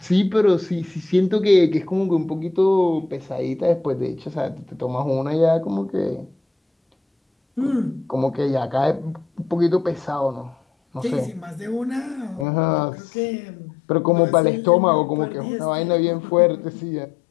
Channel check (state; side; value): drops out; right; at 12.5 s